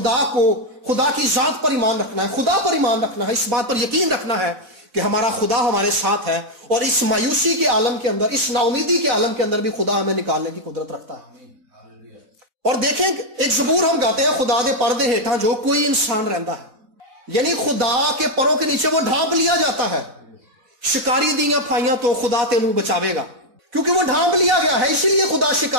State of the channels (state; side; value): late; left; 4.0 ms